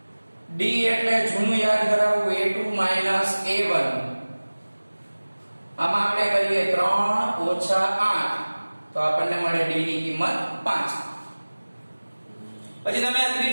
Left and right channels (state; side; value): inverted; both; correlation -1.00